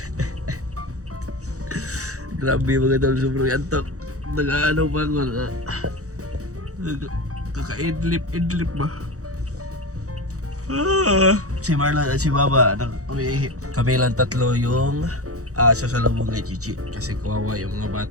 Grabe mga tol, sobrang antok. Nag-ano pa ako. Kaka-idlip ba? Si Marlon at si Baba, kami lang tatlo yung sasalubong kay Chichi. Kasi kawawa yung mga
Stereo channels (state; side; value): late; left; 0.65 ms